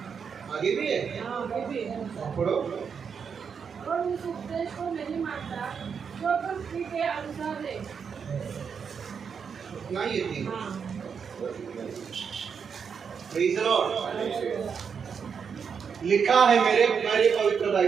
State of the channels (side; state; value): left; quieter; 6.5 dB